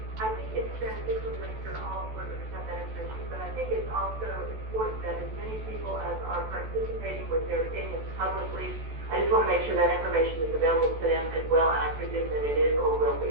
I think it's beneficial to make sure all board members have that information, but I think it's also important that as many people as are participating with their opinions publicly, I just want to make sure that information is available to them as well, and I presume that it is or will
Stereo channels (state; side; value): late; left; 14 ms